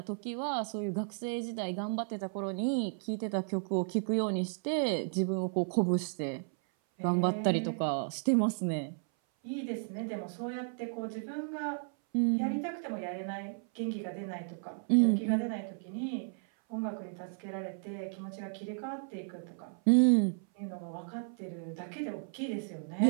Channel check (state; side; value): silent; left; 55 dB below the other